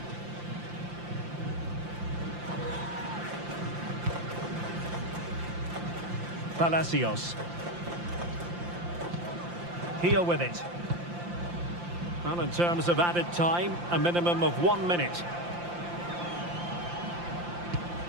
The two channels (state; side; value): late; left; 5.8 ms